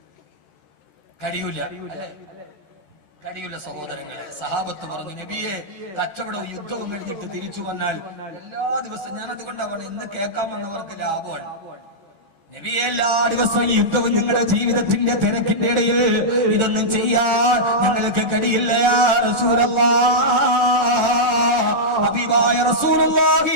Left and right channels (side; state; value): right; late; 13 ms